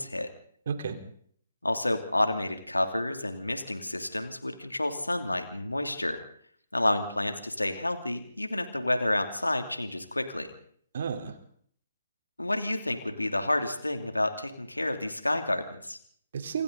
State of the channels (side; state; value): both; inverted; correlation -0.94